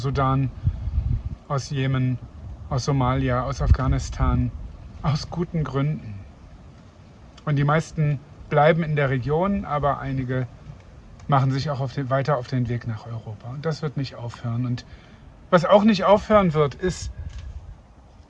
aus Jemen, aus Somalia, aus Afghanistan, aus guten Gründen. Und die meisten bleiben in der Region, aber einige machen sich auch weiter auf den Weg nach Europa. Und das wird nicht aufhören. Und was auch nicht aufhören wird, ist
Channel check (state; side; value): identical; both; correlation 1.00